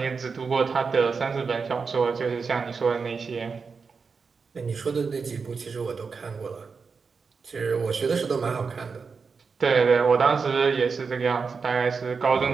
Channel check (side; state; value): left; quieter; 5.1 dB